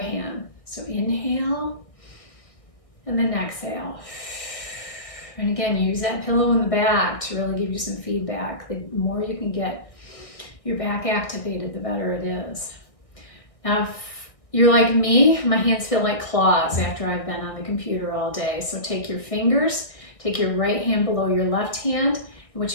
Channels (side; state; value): right; late; 1.6 ms